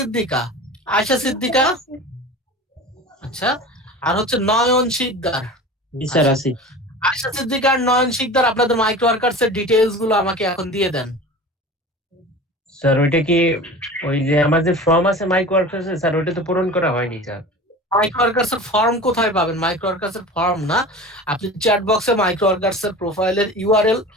আয়েশা সিদ্দিকা, আচ্ছা। আর হচ্ছে নয়ন শিকদার, জি স্যার আছি। আয়েশা সিদ্দিকা আর নয়ন শিকদার আপনাদের মাইক্রো ওয়ার্কার্স এর ডিটেইলস গুলো আমাকে এখন দিয়ে দেন। স্যার ওইটা কি ওই যে আমার যে ফর্ম আছে মাইক ওয়ার্কার্স স্যার ওইটা তো পূরণ করা হয়নি স্যার। মাইক্রো ওয়ার্কার্স এর ফর্ম কোথায় পাবেন? মাইক্রো ওয়ার্কার্স এর ফর্ম না, আপনি চ্যাট বক্সে মাইক্রো ওয়ার্কার্স এর প্রোফাইলের ইউআরএল,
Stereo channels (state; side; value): normal; both; correlation 0.36